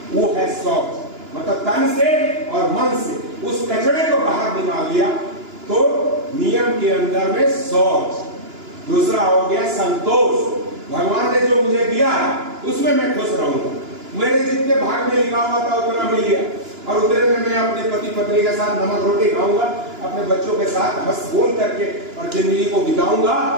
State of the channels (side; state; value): left; late; 2.9 ms